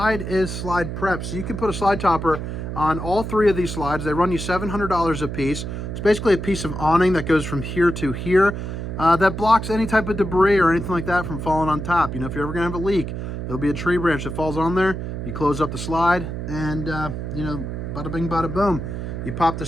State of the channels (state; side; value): noise; right; hum, 5 dB below the sound